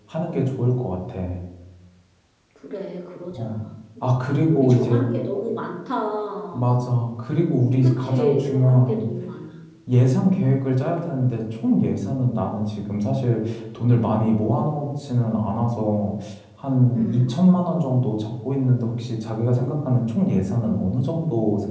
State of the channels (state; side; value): identical; both; correlation 1.00